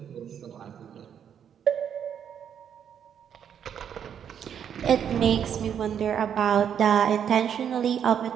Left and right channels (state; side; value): quieter; left; 8.5 dB